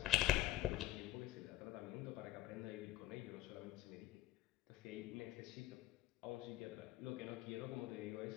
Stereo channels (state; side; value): quieter; right; 14.7 dB